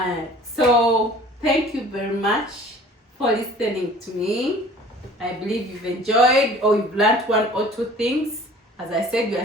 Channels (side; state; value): both; normal; correlation 0.48